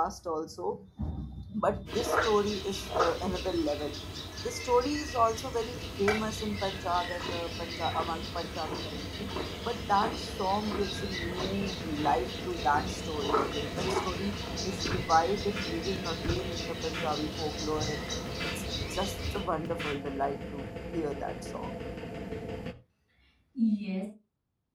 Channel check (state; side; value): identical; both; correlation 1.00